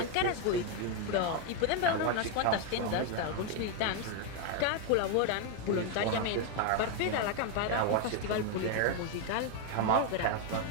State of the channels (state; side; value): different; both; correlation 0.01